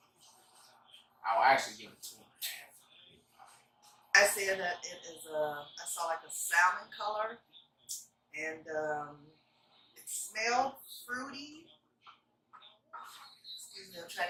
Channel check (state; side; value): identical; both; correlation 1.00